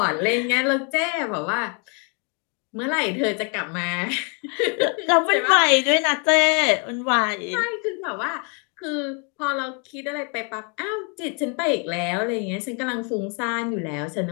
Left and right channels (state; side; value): quieter; right; 36.7 dB